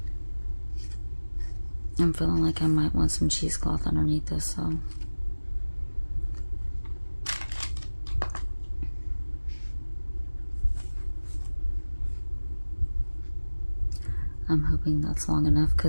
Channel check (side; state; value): both; inverted; correlation -1.00